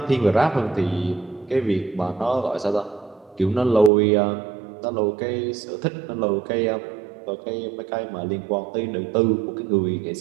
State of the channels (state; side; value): drops out; left; at 3.9 s